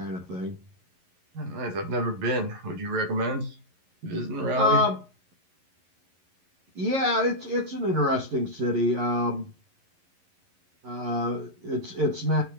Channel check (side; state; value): left; late; 11 ms